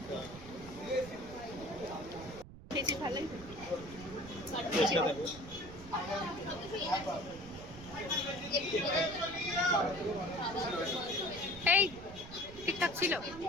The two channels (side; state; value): right; noise; rumble, 15 dB below the sound